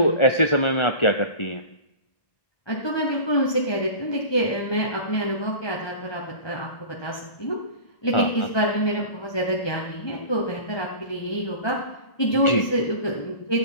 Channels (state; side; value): late; right; 1.4 ms